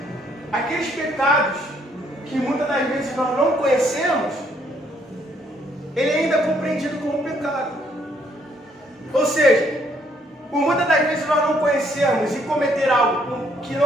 aqueles pecados que muitas das vezes nós não conhecemos, ele ainda é compreendido como pecado. Ou seja, por muitas das vezes nós não conhecermos e cometer algo que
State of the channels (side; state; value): both; normal; correlation 0.68